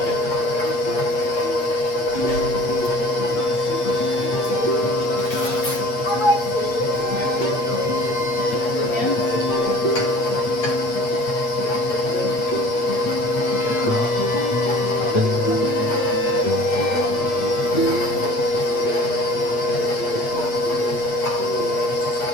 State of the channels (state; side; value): late; right; 8.5 ms